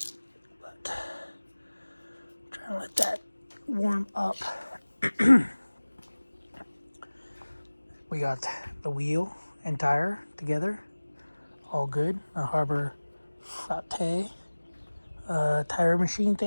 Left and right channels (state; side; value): inverted; both; correlation -1.00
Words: But I'm trying to let that warm up. We got the wheel and tire together, all good. A Harbor Flat tire machine